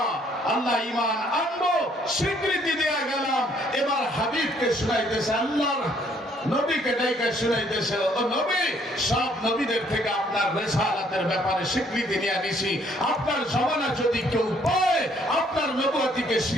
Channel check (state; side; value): normal; both; correlation 0.65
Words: আল্লাহ ঈমান আনবো, স্বীকৃতি দেয়া গেলাম। এবার হাবিবকে শুনাইতেছে, আল্লাহর নবীকে ডাইকা শুনাইতেছে, ও নবী, সব নবীদের থেকে আপনার রিসালাতের ব্যাপারে স্বীকৃতি নিয়ে নিছি, আপনার জমানা যদি কেউ পায় আপনার নবুয়তিকে